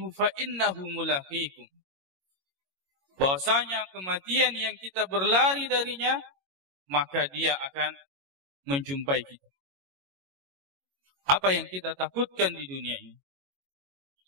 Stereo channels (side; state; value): left; late; 22 ms